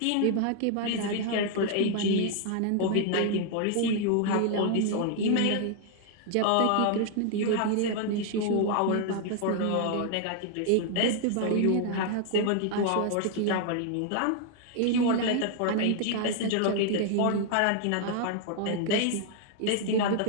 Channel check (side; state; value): both; different; correlation 0.00